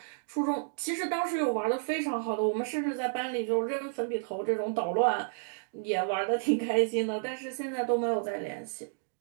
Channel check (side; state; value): left; silent; digital silence